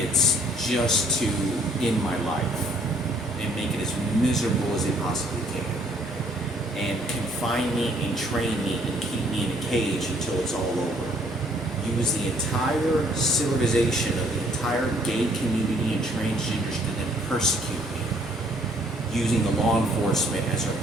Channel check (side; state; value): both; normal; correlation 0.63